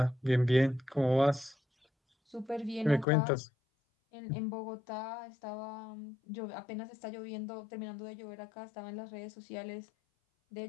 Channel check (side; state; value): right; drops out; at 3.1 s